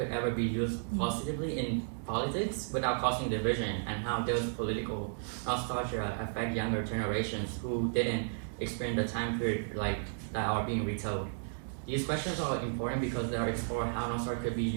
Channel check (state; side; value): silent; left; digital silence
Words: ever be used positively in politics without causing division, and how does political nostalgia affect younger generations who didn't experience the time period that are being retold. These questions are important because they explore how nostalgia could be